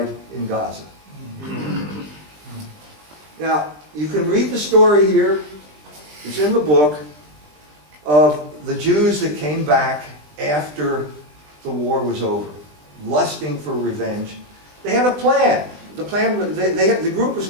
in Gaza. Now, you can read the story here. It's in the book of the Jews that came back after the war was over, lusting for revenge. They had a plan. The plan, the group was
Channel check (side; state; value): left; late; 20 ms